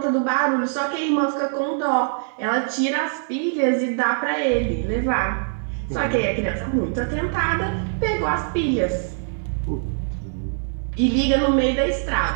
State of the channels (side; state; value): left; silent; 58 dB below the other